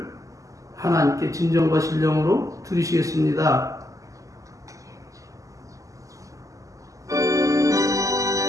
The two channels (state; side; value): late; left; 0.16 ms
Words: 하나님께 진정과 신령으로 드리시겠습니다.